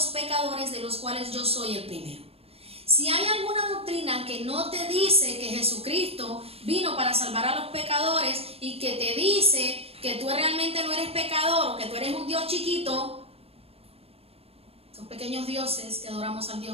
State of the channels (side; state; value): left; late; 0.28 ms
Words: pecadores, de los cuales yo soy el primero. Si hay alguna doctrina que no te dice que Jesucristo vino para salvar a los pecadores y que te dice que tú realmente no eres pecador o que tú eres un Dios chiquito, son pequeños dioses que adoramos al Dios